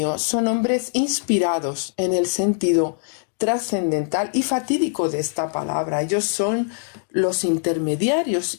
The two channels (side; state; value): right; silent; digital silence